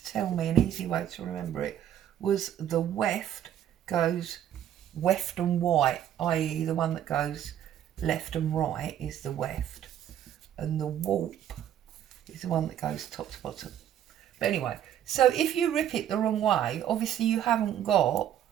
tell me an easy way to remember it was the weft goes weft and white, i.e. the one that goes left and right is the weft. And the warp is the one that goes top to bottom. But anyway, so if you rip it the wrong way, obviously you haven't got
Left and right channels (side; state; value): left; quieter; 10.7 dB